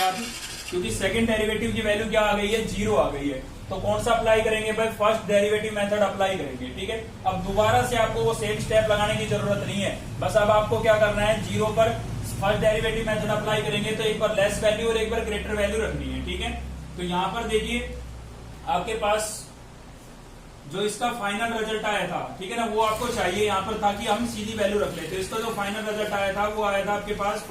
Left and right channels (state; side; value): identical; both; correlation 1.00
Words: क्योंकि सेकंड डेरिवेटिव की वैल्यू क्या आ गई है 0 आ गई है। तो कौन सा अप्लाई करेंगे भाई फर्स्ट डेरिवेटिव मेथड अप्लाई करेंगे, ठीक है। अब दोबारा से आपको वो सेम स्टेप लगाने की जरूरत नहीं है, बस अब आपको क्या करना है 0 पर फर्स्ट डेरिवेटिव मेथड अप्लाई करेंगे तो एक बार लेस वैल्यू और एक बार ग्रेटर वैल्यू रखनी है, ठीक है। तो यहाँ पर देखिए आपके पास जो इसका फाइनल रिजल्ट आया था, ठीक है ना, वो आपको चाहिए यहाँ पर ताकि हम सीधी वैल्यू रख लेते। इसका जो फाइनल रिजल्ट आया था वो आया था आपके पास